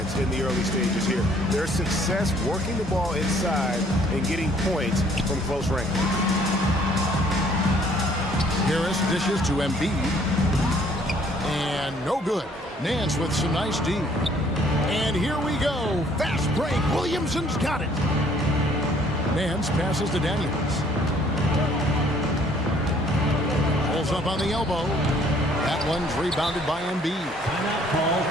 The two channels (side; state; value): both; normal; correlation 0.60